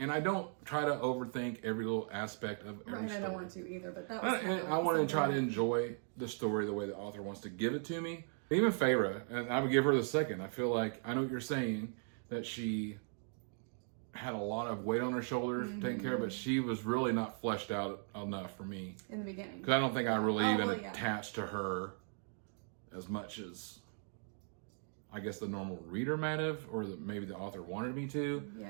I don't try to overthink every little aspect of every Right. story. I don't want to either, but that was. And I want to try to enjoy the story the way the author wants to give it to me. Even Feyre, and I would give her the second. I feel like I know what you're saying, that she had a lot of weight on her shoulders to take care of, but she was really not fleshed out enough for me. in the beginning. Because I don't think I really even well, yeah. attached to her as much as I guess the normal reader might have, or maybe the author wanted me to.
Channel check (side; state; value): left; silent; 52 dB below the other